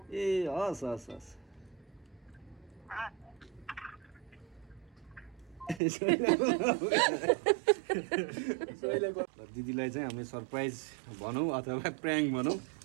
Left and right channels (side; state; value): left; drops out; at 5.8 s